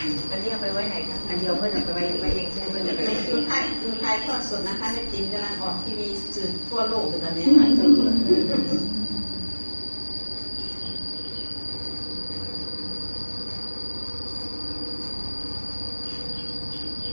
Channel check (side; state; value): both; inverted; correlation -1.00